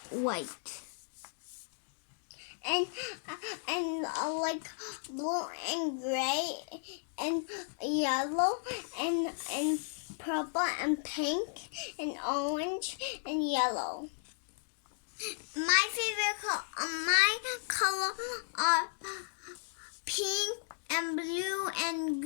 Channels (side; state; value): right; silent; digital silence